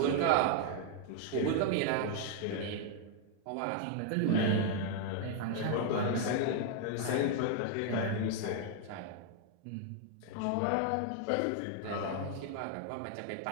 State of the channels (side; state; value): both; different; correlation 0.00